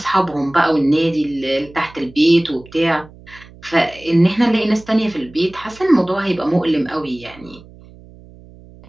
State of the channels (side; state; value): right; noise; hum, 22 dB below the sound